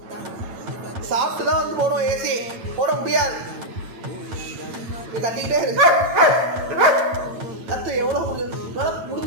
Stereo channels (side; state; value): left; late; 8.9 ms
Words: சாப்பிட்டு தான் வந்து போடும். ஏசி போட முடியாது. நீ கத்திக்கிட்டே இருக்கு. கத்து எவ்வளோ